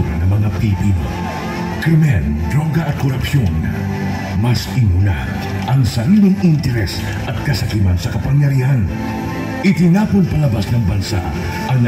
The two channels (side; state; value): both; identical; correlation 1.00